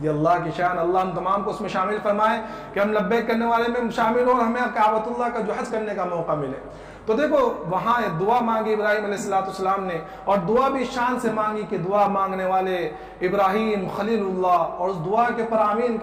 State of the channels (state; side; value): identical; both; correlation 1.00